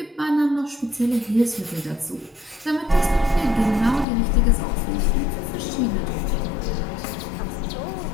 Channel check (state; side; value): drops out; right; at 4.0 s